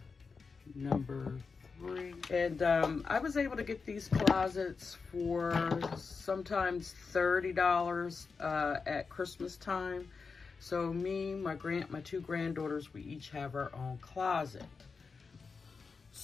number 3. And I was able to get these closets for sometimes $30 at Christmas time. So me, my 2 granddaughters, we each have our own closet.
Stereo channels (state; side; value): quieter; right; 4.9 dB